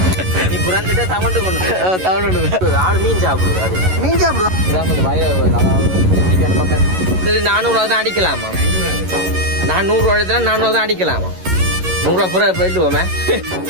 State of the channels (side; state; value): left; late; 11 ms